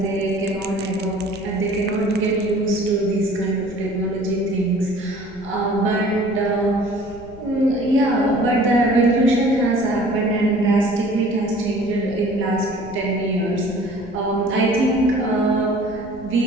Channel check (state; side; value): noise; left; rumble, 20 dB below the sound